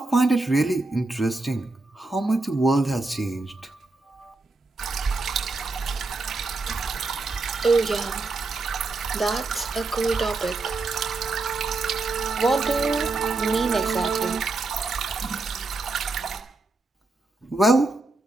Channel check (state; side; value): quieter; left; 3.4 dB